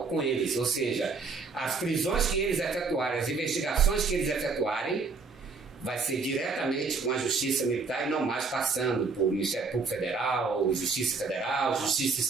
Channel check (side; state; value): left; quieter; 4.5 dB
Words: com eles. Ou seja, as prisões que eles efetuarem, as investigações que eles efetuarem, vai ser diretamente com a Justiça Militar e não mais passando por Ministério Público Federal, Justiça Federal, Justiça